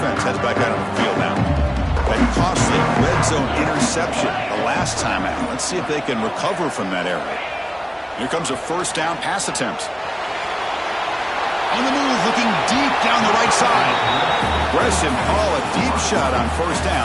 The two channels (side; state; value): both; identical; correlation 1.00